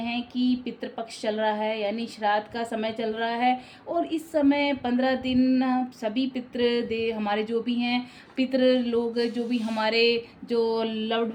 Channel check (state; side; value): identical; both; correlation 1.00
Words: कि पितृपक्ष चल रहा है, यानी श्राद्ध का समय चल रहा है। और इस समय 15 दिन सभी पितृ दे हमारे जो भी हैं पितृ लोग, जो भी हमारे जो